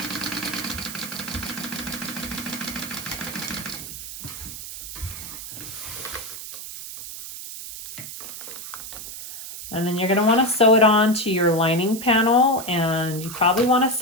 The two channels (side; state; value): right; noise; hiss, 10 dB below the sound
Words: And then you're going to want to sew it on to your lining panel, and you probably want to